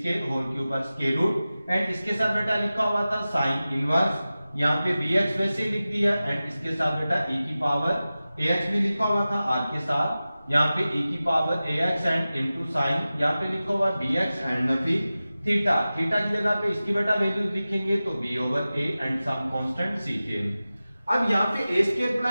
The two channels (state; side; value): inverted; both; correlation -0.96